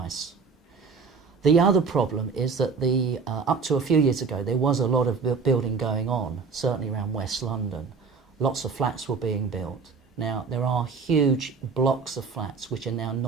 The other problem is that up to a few years ago there was a lot of building going on, certainly around West London. Lots of flats were being built. Now there are huge blocks of flats which are now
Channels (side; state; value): left; quieter; 5.1 dB